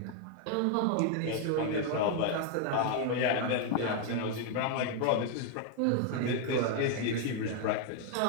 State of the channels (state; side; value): different; both; correlation 0.00